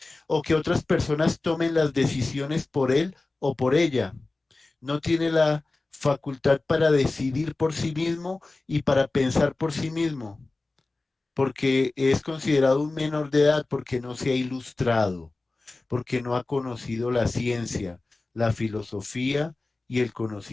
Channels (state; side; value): quieter; right; 3.3 dB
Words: o que otras personas tomen las decisiones por él o por ella. No tiene la facultad para decidir por sí mismo y para pensar por sí mismo, porque es considerado un menor de edad, porque no se ha ilustrado, porque no ha conocido la ciencia, la filosofía y el